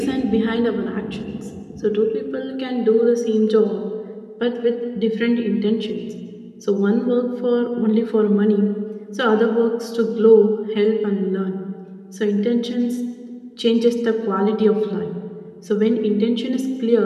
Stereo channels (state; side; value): identical; both; correlation 1.00